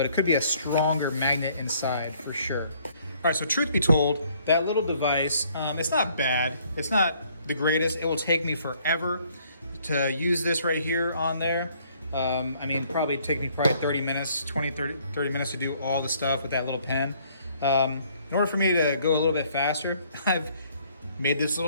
it could be a stronger magnet inside for sure. All right, so truth be told, that little device, it's not bad. It's not the greatest. It will take me forever to use this right here on there. I mean, probably take me 30 minutes, 30 minutes to do all the stuff with that little pen. In order for me to go a little bit faster, I've made this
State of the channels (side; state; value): both; inverted; correlation -0.63